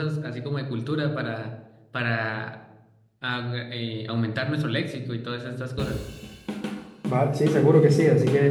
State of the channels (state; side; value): identical; both; correlation 1.00